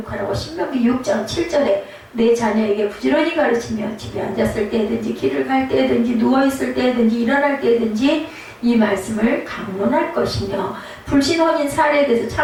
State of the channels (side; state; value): both; identical; correlation 1.00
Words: 신명기 6장 7절에 내 자녀에게 부지런히 가르치며 집에 앉았을 때든지 길을 갈 때든지 누워있을 때든지 일어날 때든지 이 말씀을 강론할 것이며 불신혼인 사례에 대해서